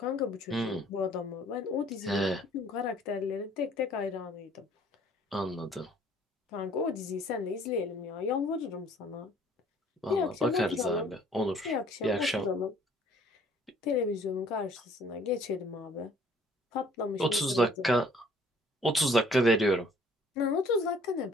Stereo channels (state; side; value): normal; both; correlation 0.57